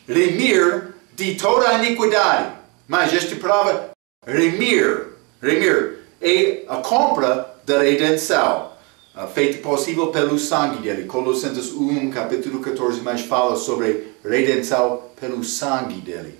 remir de toda a iniquidade. Mas esta palavra, remir, é a compra da redenção, feita possível pelo sangue dele. Colossenses 1, capítulo 14, mais fala sobre redenção pelo sangue dele.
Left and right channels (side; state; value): left; quieter; 30.8 dB